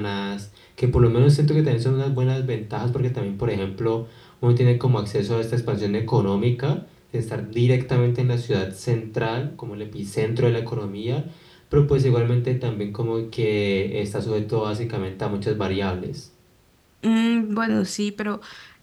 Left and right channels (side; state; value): both; identical; correlation 1.00